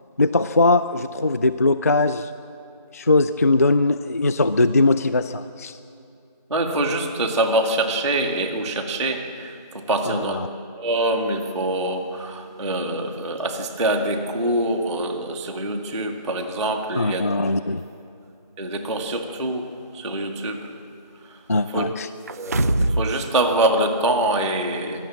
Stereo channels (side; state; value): both; inverted; correlation -0.44